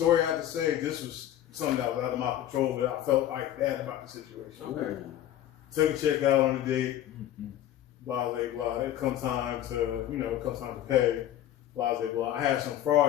I have to say, this was something that was out of my control, but I felt like bad about the situation. Okay. Took a check out on the date, blah, blah, blah. It come time to, you know, come time to pay, blah, blah, blah. I had some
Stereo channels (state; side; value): quieter; right; 12.1 dB